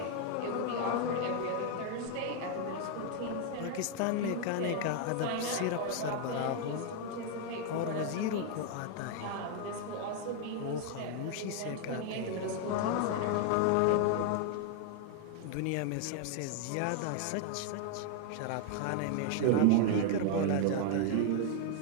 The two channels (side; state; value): both; different; correlation 0.00